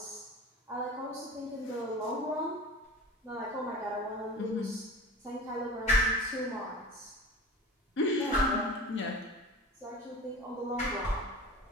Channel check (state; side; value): normal; both; correlation 0.35